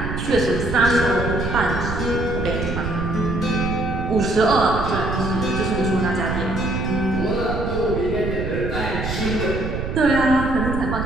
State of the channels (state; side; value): noise; right; rumble, 4 dB below the sound